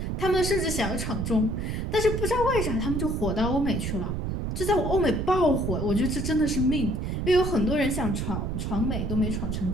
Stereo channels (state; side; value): noise; right; rumble, 2 dB below the sound